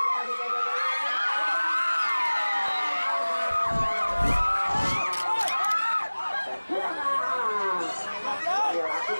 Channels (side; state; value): both; inverted; correlation -1.00